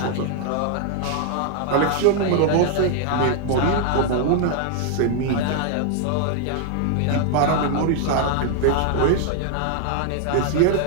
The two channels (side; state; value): both; different; correlation 0.00